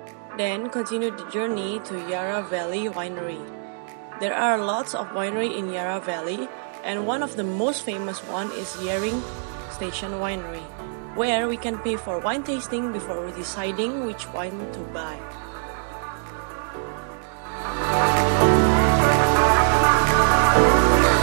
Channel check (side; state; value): left; silent; digital silence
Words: then continued the journey to Yarra Valley Winery. There are lots of winery in Yarra Valley, and one of the most famous one is Yering Station Winery, where we can pay for wine tasting before deciding which wine to buy.